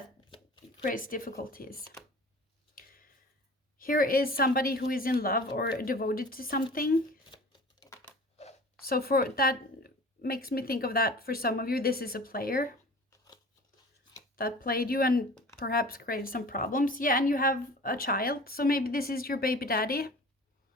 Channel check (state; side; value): normal; both; correlation 0.41